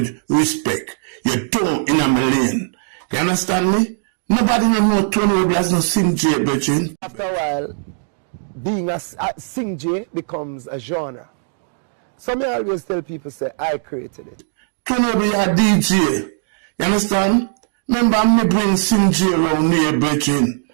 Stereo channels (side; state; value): left; silent; digital silence